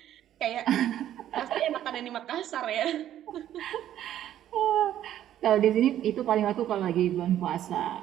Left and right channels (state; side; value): quieter; left; 11.6 dB